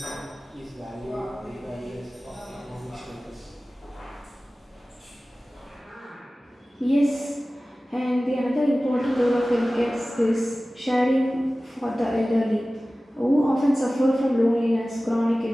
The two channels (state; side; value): normal; both; correlation 0.97